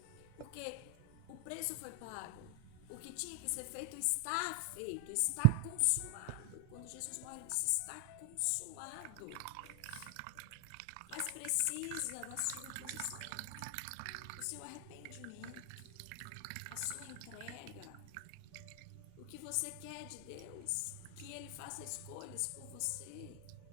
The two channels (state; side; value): different; both; correlation 0.00